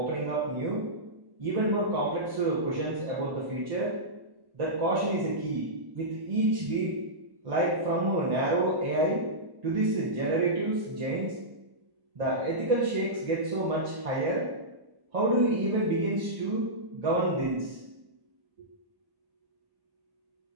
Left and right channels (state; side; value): late; left; 1.1 ms